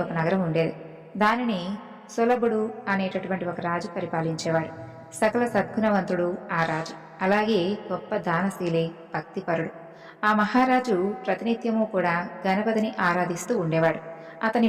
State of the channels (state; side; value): identical; both; correlation 1.00